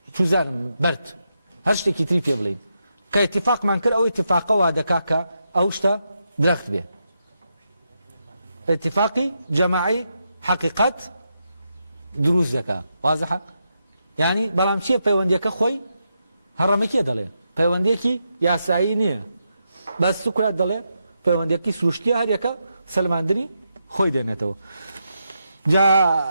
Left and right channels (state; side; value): inverted; both; correlation -0.84